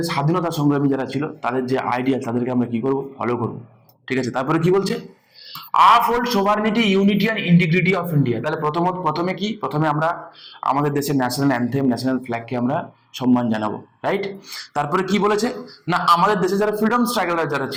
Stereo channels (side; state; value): both; identical; correlation 1.00